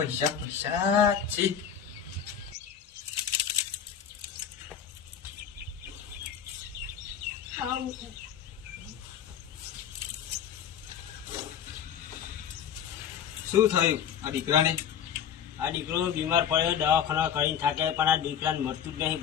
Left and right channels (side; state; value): right; quieter; 8.7 dB